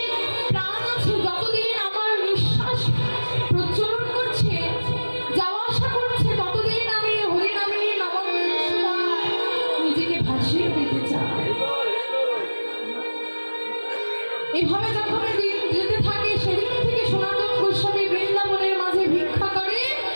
প্রাণ আছে, যতদিন আমার নিঃশ্বাস প্রচলন করছে, যাওয়া আসা করছে, ততদিন আমি হরিনামে নামামৃত সুধায় নিজেকে ভাসিয়ে দিতে চাই। এভাবে যখন দিন যেতে থাকে, সেদিন থেকে সনাতন গোস্বামী বৃন্দাবনের মাঝে ভিক্ষা করে,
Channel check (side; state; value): both; inverted; correlation -1.00